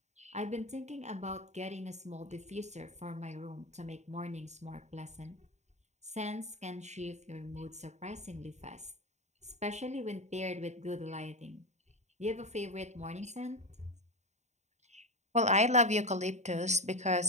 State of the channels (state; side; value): late; left; 0.33 ms